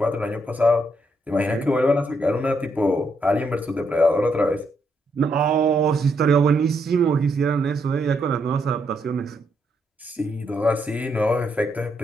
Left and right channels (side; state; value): both; normal; correlation 0.77